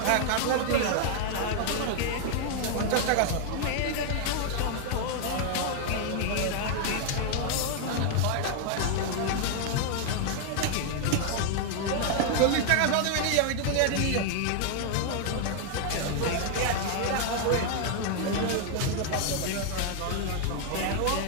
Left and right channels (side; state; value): both; different; correlation 0.00